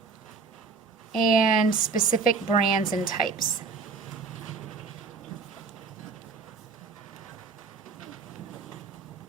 and specific brands and types.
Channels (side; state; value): left; quieter; 4.8 dB